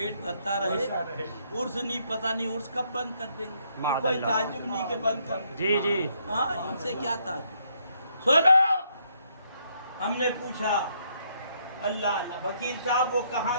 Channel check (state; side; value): inverted; both; correlation -0.72